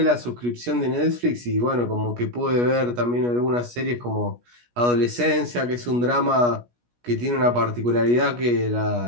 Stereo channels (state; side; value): late; left; 17 ms